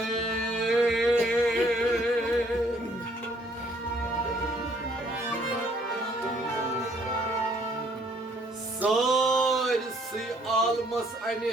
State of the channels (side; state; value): both; normal; correlation 0.64